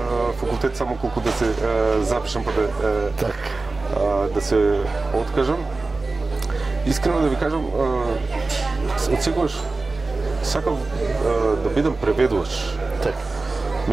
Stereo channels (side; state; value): left; quieter; 3.5 dB